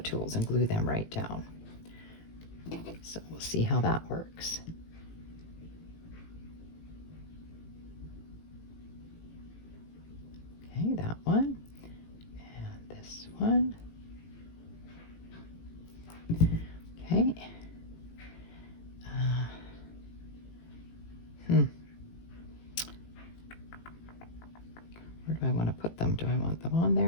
tools and glue them right down. So we'll see how that works. Okay, that one, and this one. Okay. Where do I want to put them? Do I want them on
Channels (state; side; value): late; right; 18 ms